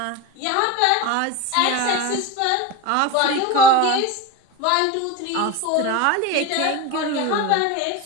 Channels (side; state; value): both; different; correlation 0.07